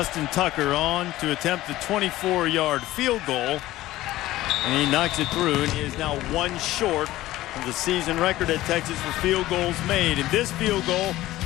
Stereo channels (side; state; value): right; quieter; 16.2 dB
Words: Tucker on to attempt the 24-yard field goal, and he knocks it through, and he is now one short of the season record at Texas for field goals made. And this field goal